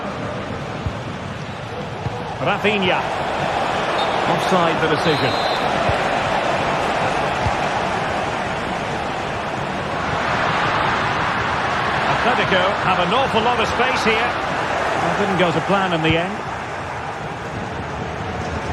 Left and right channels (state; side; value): identical; both; correlation 1.00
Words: Rafinha. Offside the decision. Atletico have an awful lot of space here. That didn't go to plan in the end.